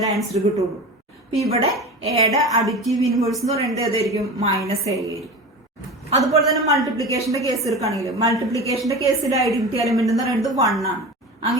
ആൻസർ കിട്ടുള്ളൂ. അപ്പൊ ഇവിടെ എയുടെ അഡിറ്റീവ് ഇൻവേഴ്സ് എന്ന് പറയുന്നത് ഏതായിരിക്കും? മൈനസ് എ ആയിരിക്കും. അതുപോലെ തന്നെ മൾട്ടിപ്ലിക്കേഷന്റെ കേസ് എടുക്കുകയാണെങ്കിൽ മൾട്ടിപ്ലിക്കേഷന്റെ കേസിൽ ഐഡന്റിറ്റി എലമെന്റ് എന്ന് പറയുന്നത് 1 ആണ്.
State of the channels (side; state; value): both; normal; correlation 0.31